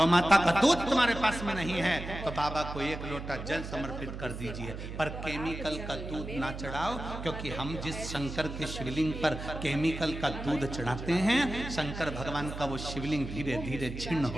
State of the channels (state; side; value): noise; right; hum, 8 dB below the sound